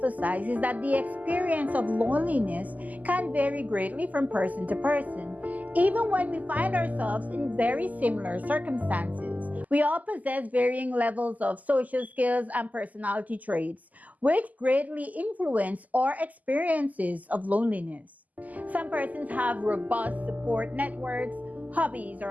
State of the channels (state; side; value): late; left; 0.078 ms